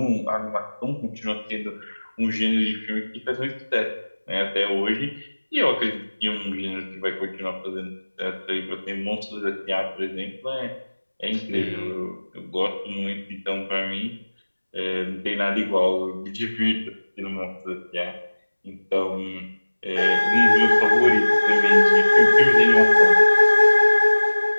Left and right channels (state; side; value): inverted; both; correlation -1.00